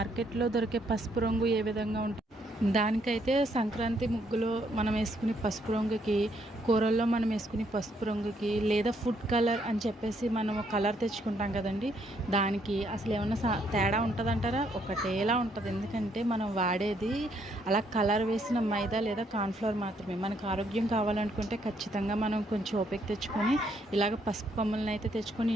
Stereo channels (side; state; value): both; normal; correlation 0.71